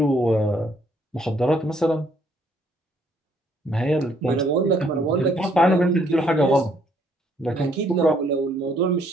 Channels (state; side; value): normal; both; correlation 0.67